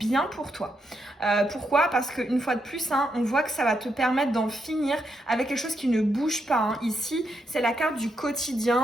pour toi. Pourquoi? Parce qu'une fois de plus, on voit que ça va te permettre d'en finir avec quelque chose qui ne bouge pas. Ici, c'est la carte du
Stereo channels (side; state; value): both; normal; correlation 0.81